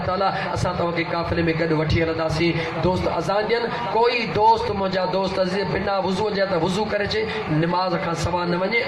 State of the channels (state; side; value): identical; both; correlation 1.00